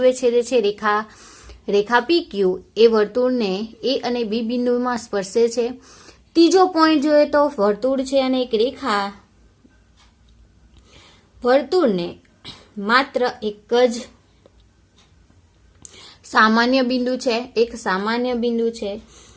છેદે છે રેખા PQ એ વર્તુળને A અને B બિંદુમાં સ્પર્શે છે. ત્રીજો પોઈન્ટ જોઈએ તો વર્તુળ છે અને એક રેખા વર્તુળને માત્ર એક જ સામાન્ય બિંદુ છે, એક સામાન્ય બિંદુ છે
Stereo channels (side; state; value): both; identical; correlation 1.00